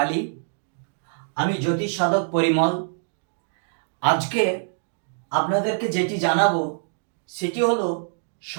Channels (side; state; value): left; silent; digital silence